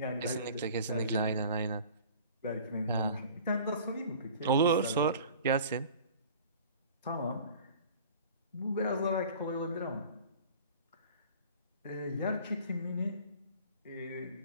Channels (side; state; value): both; inverted; correlation -0.45